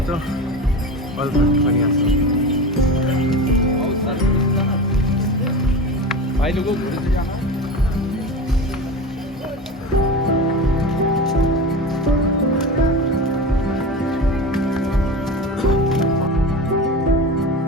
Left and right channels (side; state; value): both; normal; correlation 0.28